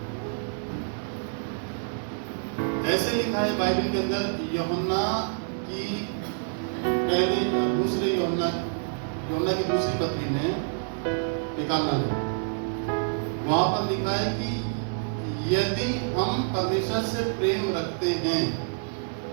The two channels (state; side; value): silent; left; digital silence